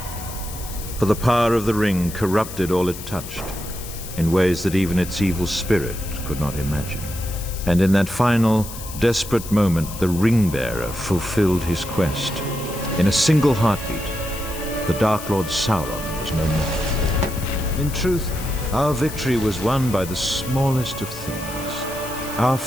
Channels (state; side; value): noise; left; hiss, 12 dB below the sound